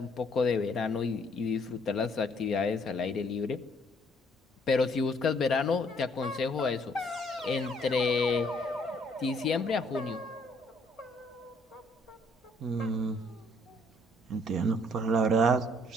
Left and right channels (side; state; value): both; normal; correlation 0.65